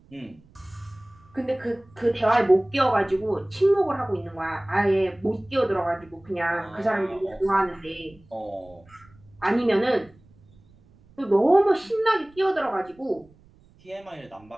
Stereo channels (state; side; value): noise; right; rumble, 28 dB below the sound